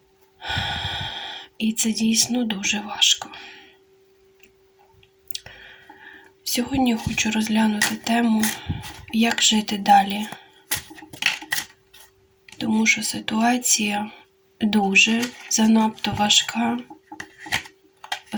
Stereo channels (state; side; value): identical; both; correlation 1.00